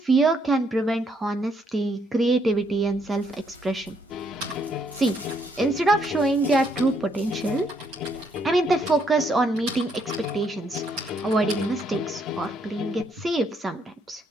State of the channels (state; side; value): normal; both; correlation 0.72